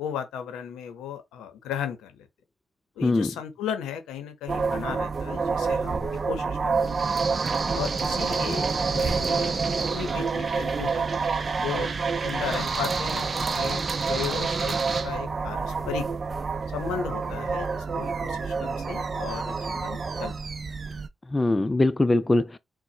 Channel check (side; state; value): both; normal; correlation 0.84